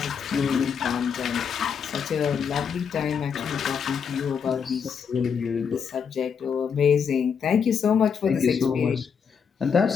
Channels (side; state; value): right; quieter; 6.8 dB